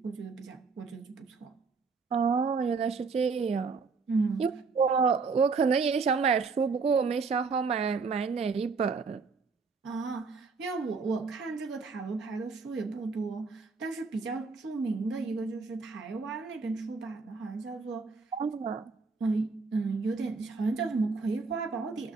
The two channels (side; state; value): left; quieter; 4.7 dB